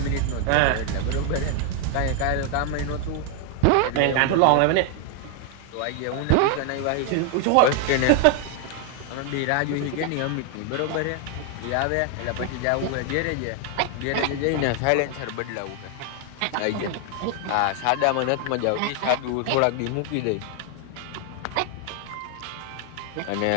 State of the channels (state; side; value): different; both; correlation 0.00